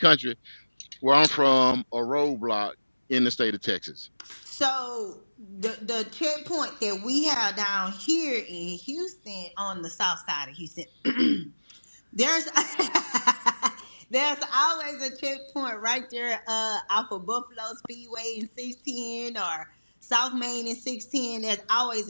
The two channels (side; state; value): both; inverted; correlation -1.00